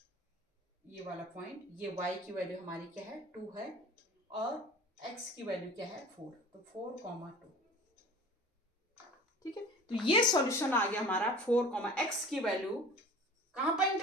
ये वाला पॉइंट। ये y की वैल्यू हमारी क्या है, 2 है, और x की वैल्यू क्या है, 4, तो 4, 2। ठीक है, तो ये सॉल्यूशन आ गया हमारा। 4, x की वैल्यू कहां पर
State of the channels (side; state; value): both; normal; correlation 0.41